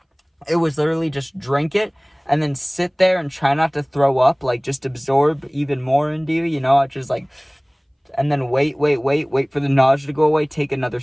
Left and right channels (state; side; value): identical; both; correlation 1.00